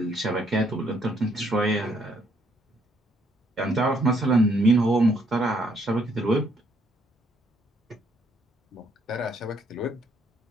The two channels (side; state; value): both; normal; correlation 0.70